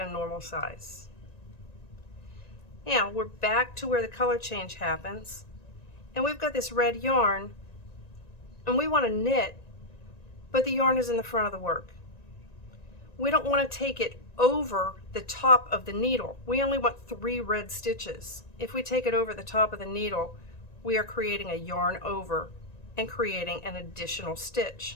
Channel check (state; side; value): late; right; 1.9 ms